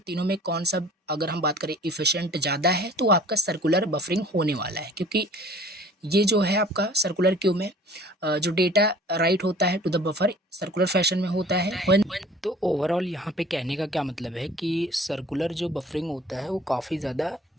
में कौन सा, अगर हम बात करें इफिशिएंट ज़्यादा है, तो आपका सर्कुलर बफरिंग होने वाला है, क्योंकि ये जो है आपका सर्कुलर क्यू में जो डेटा राइट होता है to the buffer circular fashion में होता है। तो ओवरऑल यहाँ पे कहने का क्या मतलब है कि सर्कुलर जो बफरिंग होता है वो काफ़ी ज़्यादा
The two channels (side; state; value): both; normal; correlation 0.49